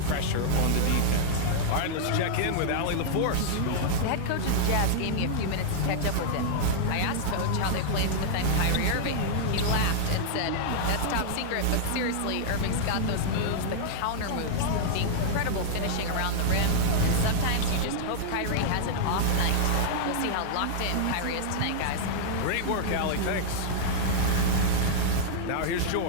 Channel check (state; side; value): different; both; correlation -0.02